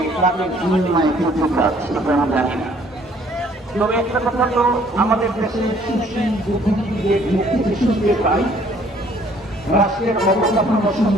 তাদের বিনিময়ে করতে পারছে, আমি জানি না। তবে একটা কথা তো আমাদের দেশের সুশীল বুদ্ধিজীবীদের মুক্তি শুনতে পাই, রাষ্ট্রের অবকাঠামো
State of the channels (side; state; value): both; normal; correlation 0.60